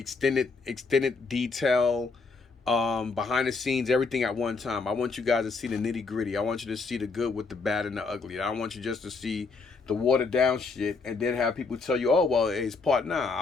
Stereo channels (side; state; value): right; quieter; 4.3 dB